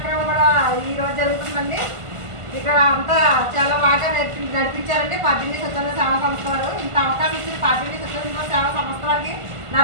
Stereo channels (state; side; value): late; left; 1.5 ms